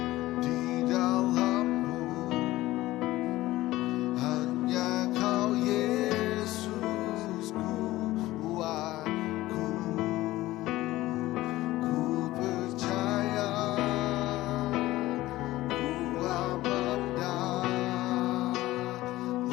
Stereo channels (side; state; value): right; quieter; 17.0 dB